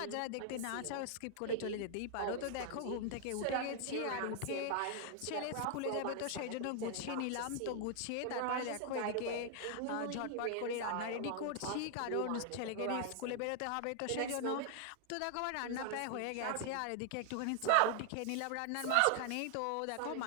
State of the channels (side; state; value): both; different; correlation 0.00